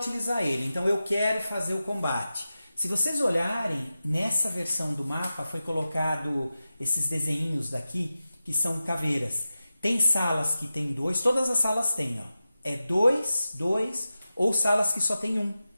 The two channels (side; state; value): both; inverted; correlation -0.93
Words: ele, então eu quero fazer o combate. Se vocês olharem, nessa versão do mapa foi colocado esses desenhinhos daqui, que são caveiras. Tem salas que tem 2, todas as salas têm, ó. É 2, 2, ou salas que só tem 1,